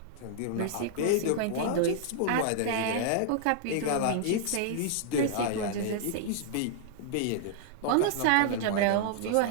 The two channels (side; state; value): both; different; correlation -0.01